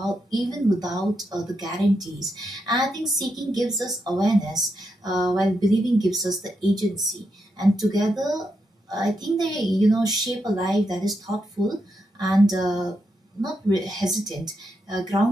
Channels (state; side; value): normal; both; correlation 0.83